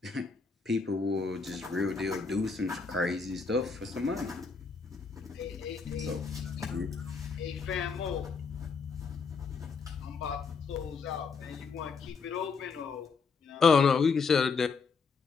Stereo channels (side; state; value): right; quieter; 5.0 dB